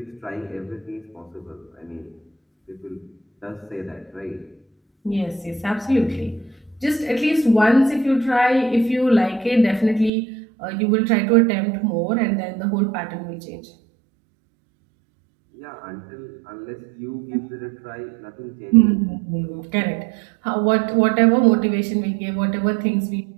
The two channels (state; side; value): drops out; left; at 10.1 s